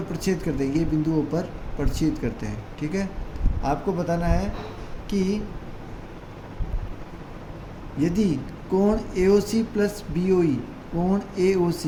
प्रच्छेद करते हैं, ये बिंदुओं पर प्रच्छेद करते हैं, ठीक है। आपको बताना है कि यदि कोण AOC प्लस BOE, कोण AOC,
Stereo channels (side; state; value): both; identical; correlation 1.00